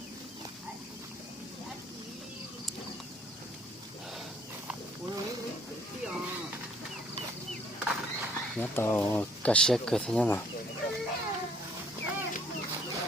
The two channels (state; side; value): normal; both; correlation 0.61